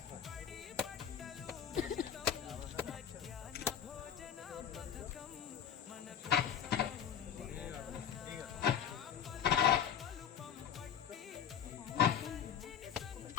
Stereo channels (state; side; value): quieter; right; 8.7 dB